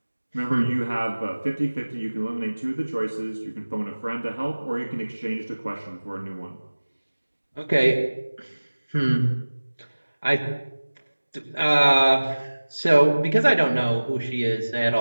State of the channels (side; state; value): both; inverted; correlation -1.00